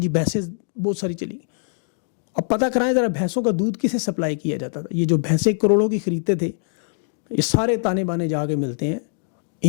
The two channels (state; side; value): silent; right; digital silence